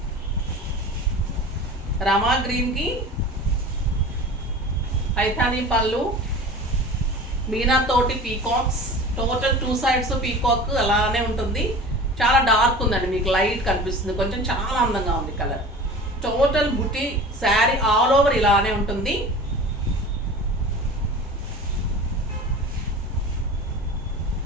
రమా గ్రీన్కి పైథానీ పళ్ళు, మీనాతోటి పీకాక్స్. టోటల్ 2 సైడ్స్ పీకాక్ అలానే ఉంటుంది. చాలా డార్క్ ఉందండి, మీకు లైట్ కనిపిస్తుంది కొంచెం. చాలా అందంగా ఉంది కలర్. టోటల్ బుటీ శారీ ఆల్ ఓవర్ ఇలానే ఉంటుంది.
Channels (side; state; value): both; normal; correlation 0.37